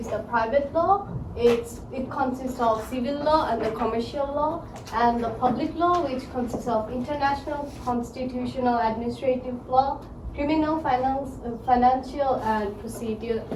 the private law. It consists of civil law and the commercial law, and the public law, which consists of international, constitutional, administrative law, criminal, financial, and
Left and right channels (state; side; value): identical; both; correlation 1.00